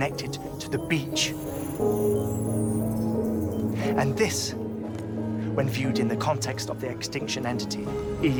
to the beach. And this, when viewed in the context of the extinction entity,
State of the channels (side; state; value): both; identical; correlation 1.00